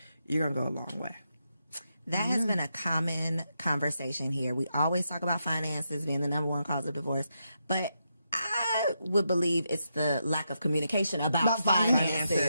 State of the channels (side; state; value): both; inverted; correlation -0.83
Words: you're going to go a long way. That has been a common conversation here. We always talk about finances being the number one cause of divorce, but I would believe it's the lack of communication about